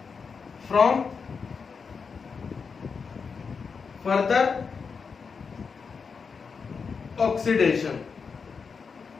from further oxidation।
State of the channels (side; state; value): right; quieter; 5.5 dB